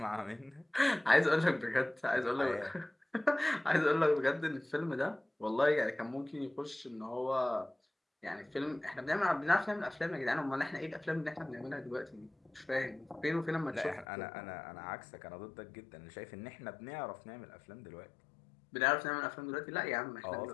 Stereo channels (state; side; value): drops out; right; at 14.1 s